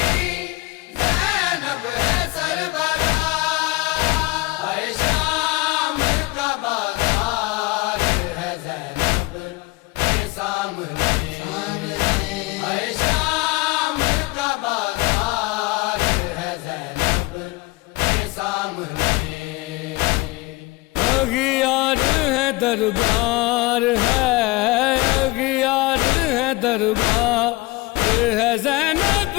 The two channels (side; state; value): right; quieter; 22.0 dB